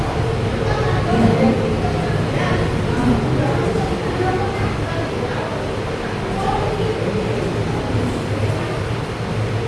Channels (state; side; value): identical; both; correlation 1.00